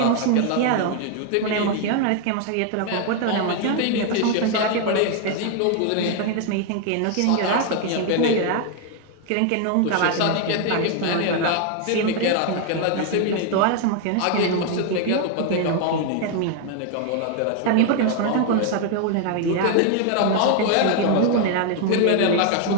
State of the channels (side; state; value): both; different; correlation 0.01